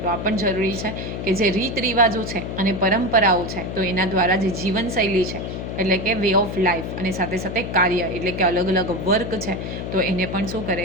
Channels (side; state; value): left; noise; hum, 6 dB below the sound